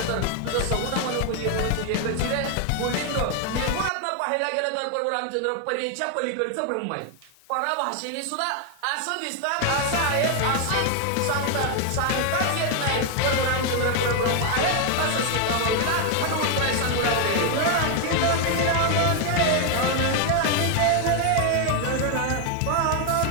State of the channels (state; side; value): different; both; correlation 0.00